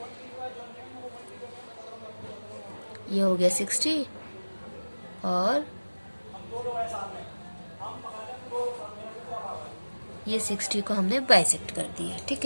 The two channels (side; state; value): both; inverted; correlation -1.00